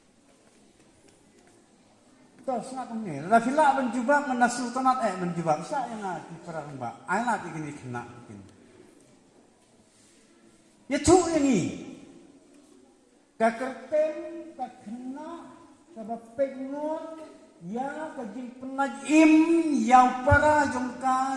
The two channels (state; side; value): identical; both; correlation 1.00